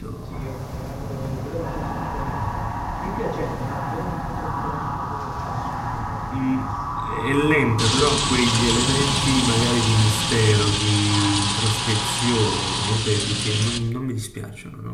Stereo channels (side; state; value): both; identical; correlation 1.00